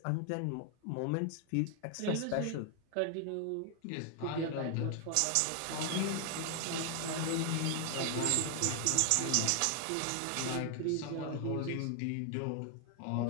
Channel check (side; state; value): both; different; correlation 0.00